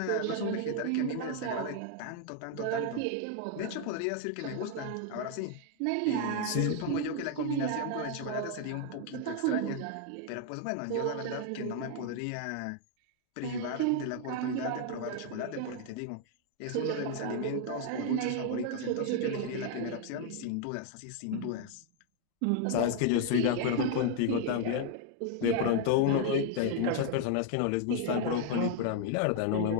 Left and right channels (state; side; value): different; both; correlation 0.00